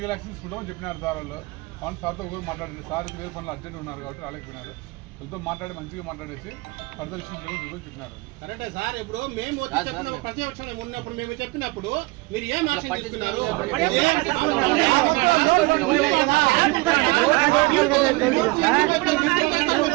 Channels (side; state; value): left; quieter; 23.3 dB